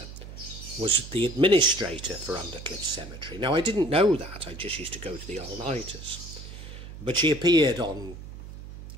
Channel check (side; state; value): right; noise; hum, 13 dB below the sound